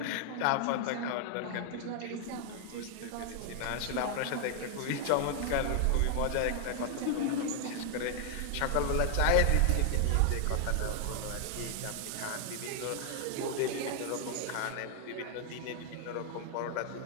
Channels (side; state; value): both; different; correlation 0.00